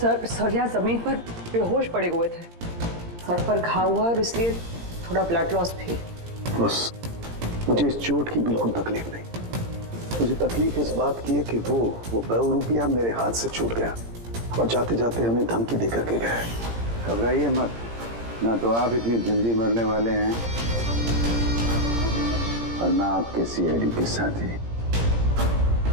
यहाँ जमीन पर बेहोश पड़े हुए थे। सर पर घाव हुआ और इसलिए थोड़ा ब्लड लॉस भी। बस मुझे इस चोट की बिल्कुल तकलीफ नहीं। मुझे तकलीफ इस बात की है कि वो ₹200 मेरे हाथ से छूट गया और जाते जाते हमें धमकी देकर के गए। घबराइए मत, ना तो आप इतनी जल्दी मरने वाले हैं और ना आपके सीआईडी के साथी।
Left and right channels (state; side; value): late; left; 17 ms